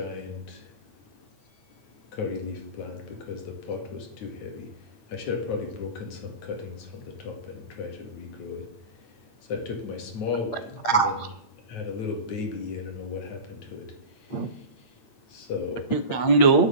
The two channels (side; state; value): right; late; 8.6 ms